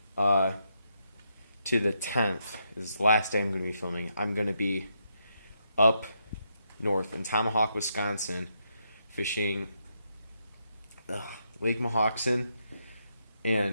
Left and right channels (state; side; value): inverted; both; correlation -0.80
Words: to the 10th is the last day I'm going to be filming. I'm going to be up north in Tomahawk, Wisconsin, fishing Lake Mohawkson,